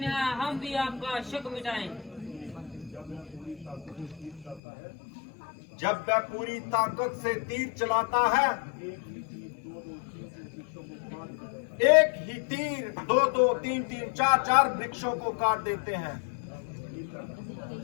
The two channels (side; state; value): right; drops out; at 4.6 s